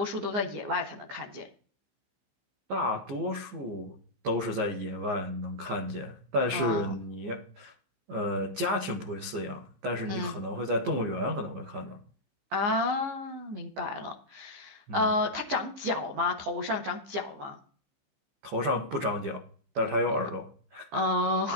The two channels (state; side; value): late; left; 15 ms